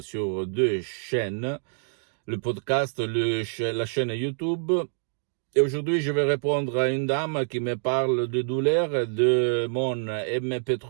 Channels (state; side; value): silent; left; digital silence